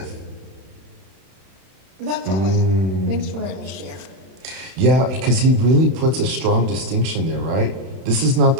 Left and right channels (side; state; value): left; late; 31 ms